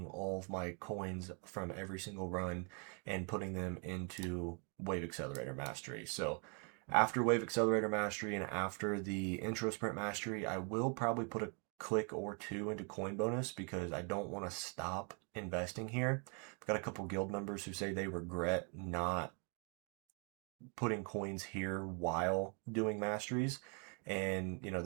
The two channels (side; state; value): left; quieter; 37.5 dB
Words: all of my coins from every single run and putting them into Wave Accelerator Mastery. So after Wave Accelerator Mastery and after the Intro Sprint Mastery, I will probably put a click or two into coin bonus because I don't want to stop investing here. I've got a couple guild members who say they regret not putting coins here while doing masteries, and you know,